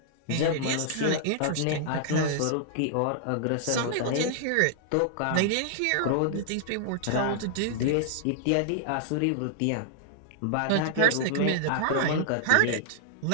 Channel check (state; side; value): different; both; correlation -0.01